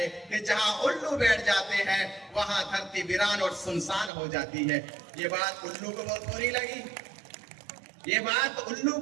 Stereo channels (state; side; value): drops out; left; at 4.1 s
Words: कि जहां उल्लू बैठ जाते हैं वहां धरती वीरान और सुनसान हो जाती है। ये बात उल्लू को बहुत बुरी लगी। ये बात उल्लू